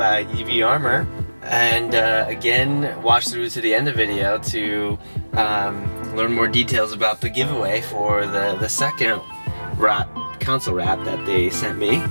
EV Armor. And again, watch through to the end of the video to learn more details about the giveaway for the second console wrap that they sent me.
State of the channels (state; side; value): inverted; both; correlation -1.00